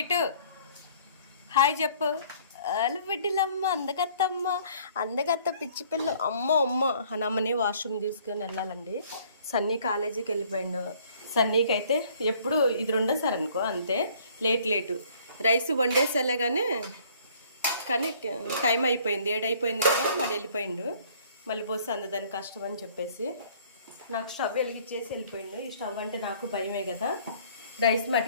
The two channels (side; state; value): both; inverted; correlation -0.58